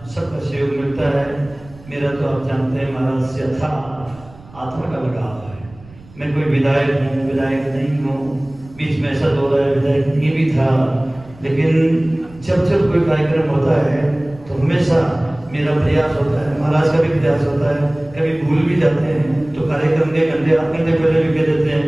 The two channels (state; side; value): noise; right; rumble, 22 dB below the sound